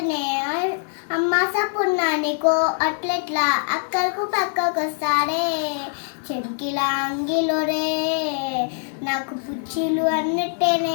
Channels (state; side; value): silent; right; 64 dB below the other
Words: అమ్మ సపున్నానికో అట్లెట్లా అక్కలకు పక్కకు వస్తాడే చెంకిలా అంగిలోరే నాకు పుచ్చిలు